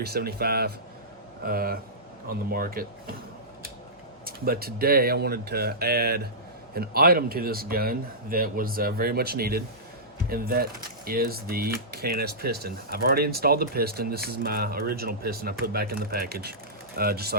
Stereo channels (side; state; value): both; normal; correlation -0.17